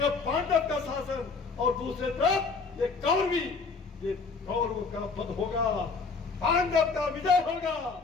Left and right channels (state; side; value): quieter; right; 4.6 dB